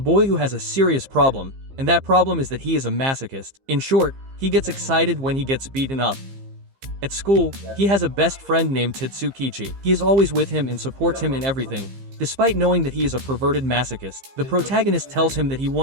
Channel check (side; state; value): left; late; 15 ms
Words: who has a serious problem, and that problem is that he is a masochist. In short, he gets excited when he gets beaten up. At school, he has a best friend named Tsukichi. He is always with him and supports him in everything. Despite knowing that he is a perverted masochist, the protagonist tells him that he